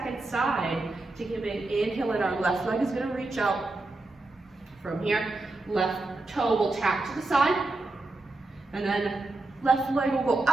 side. Taking a big inhale, and our left leg is going to reach out. From here, left toe will tap to the side, and then left leg will go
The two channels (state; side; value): quieter; left; 3.0 dB